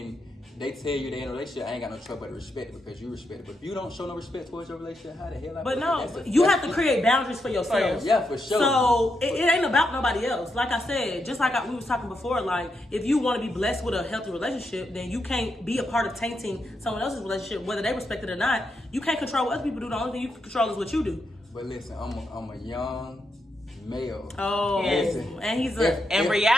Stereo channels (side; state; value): both; normal; correlation 0.83